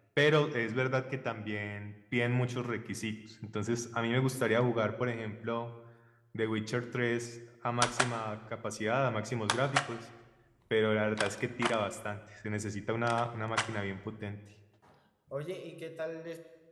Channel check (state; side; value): identical; both; correlation 1.00